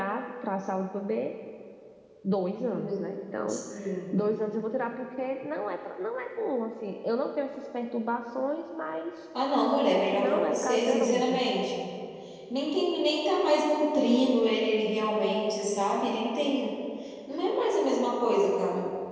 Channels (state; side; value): identical; both; correlation 1.00